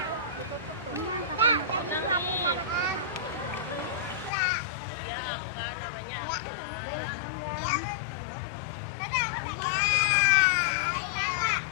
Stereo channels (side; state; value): right; drops out; at 4.3 s